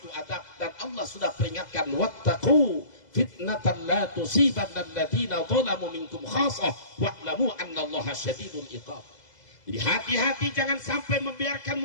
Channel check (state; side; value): late; right; 2.0 ms